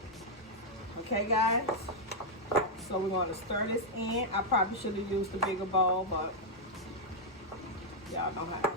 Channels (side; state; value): both; normal; correlation -0.04